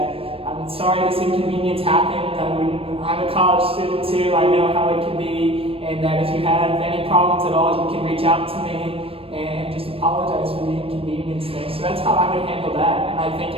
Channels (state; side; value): late; left; 0.28 ms